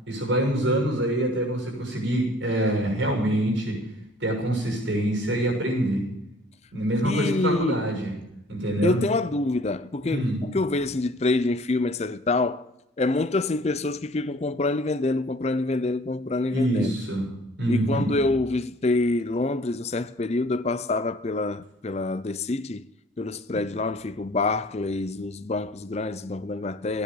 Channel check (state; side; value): normal; both; correlation 0.52